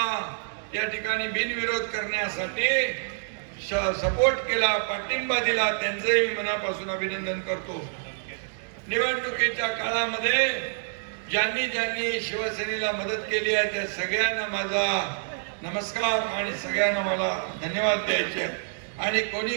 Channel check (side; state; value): left; silent; digital silence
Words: या ठिकाणी बिनविरोध करण्यासाठी सपोर्ट केला, पाठिंबा दिला. त्यांचंही मी मनापासून अभिनंदन करतो. निवडणुकीच्या काळामध्ये ज्यांनी ज्यांनी शिवसेनेला मदत केली आहे त्या सगळ्यांना माझा नमस्कार आणि सगळ्यांना मला धन्यवाद द्यायचे आहे. आणि